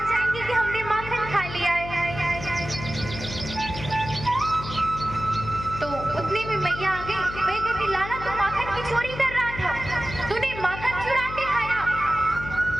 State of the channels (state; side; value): noise; left; hum, 10 dB below the sound